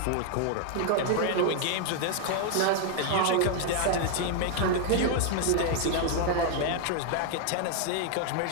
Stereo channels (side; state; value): both; different; correlation 0.00